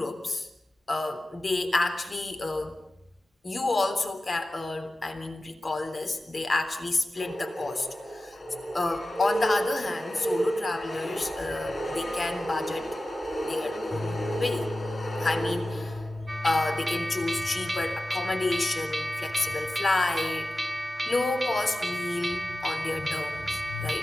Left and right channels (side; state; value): both; normal; correlation 0.95